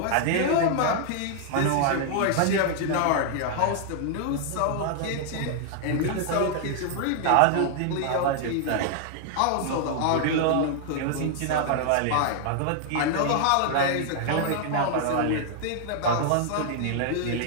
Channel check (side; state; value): both; different; correlation 0.00